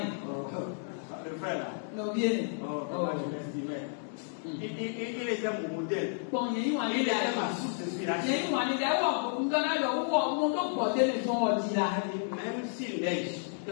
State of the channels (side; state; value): right; silent; digital silence